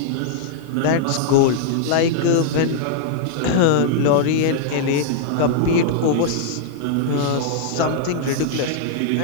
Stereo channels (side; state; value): both; different; correlation -0.01